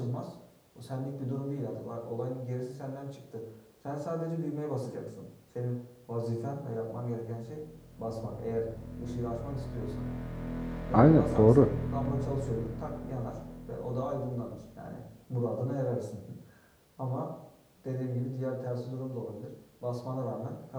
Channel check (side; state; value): both; identical; correlation 1.00